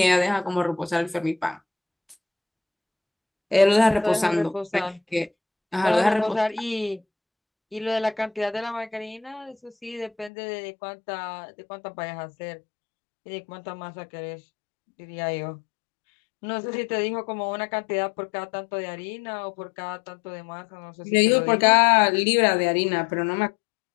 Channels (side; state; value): right; drops out; at 10.3 s